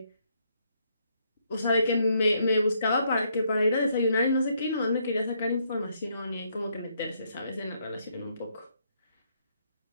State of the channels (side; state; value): both; inverted; correlation -0.73